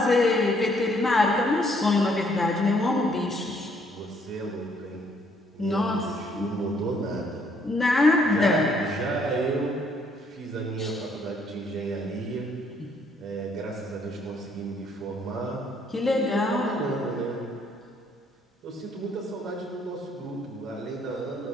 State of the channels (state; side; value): normal; both; correlation 0.67